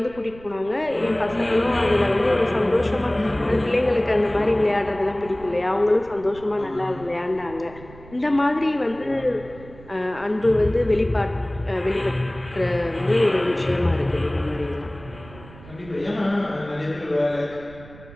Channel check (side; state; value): right; noise; rumble, 20 dB below the sound